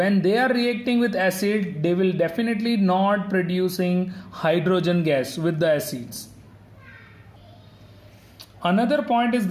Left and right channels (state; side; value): identical; both; correlation 1.00